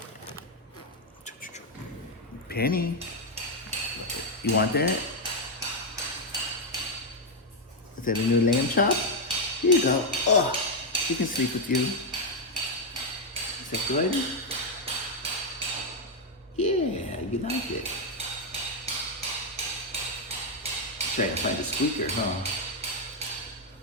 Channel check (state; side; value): normal; both; correlation 0.02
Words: Penny. You want that? Is that a new Lambchop? Here you go. Oh, she can sleep with you. Is that good? Yeah, you like it. Trying to find a squeaker, huh?